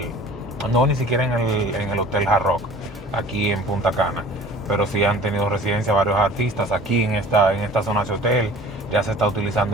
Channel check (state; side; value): normal; both; correlation 0.45